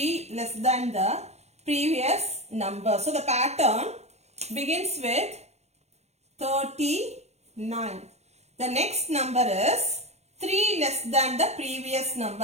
less than the previous number. So the pattern begins with 39. The next number is 3 less than the previous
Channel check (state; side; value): late; left; 0.31 ms